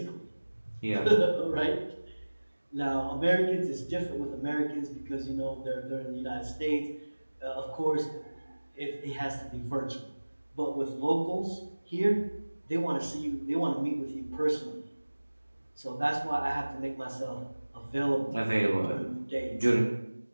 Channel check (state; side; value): inverted; both; correlation -1.00